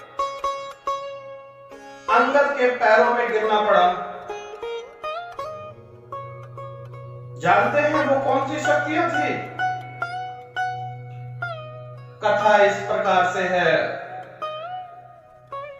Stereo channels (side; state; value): both; identical; correlation 1.00